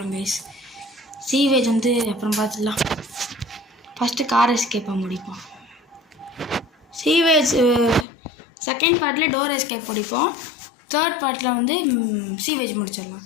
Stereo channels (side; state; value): right; drops out; at 8.1 s